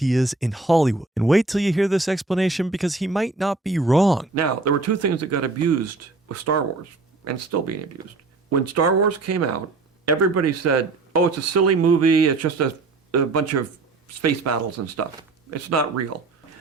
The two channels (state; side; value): quieter; left; 3.6 dB